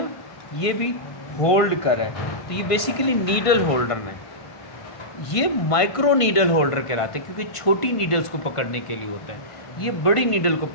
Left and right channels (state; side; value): late; right; 1.5 ms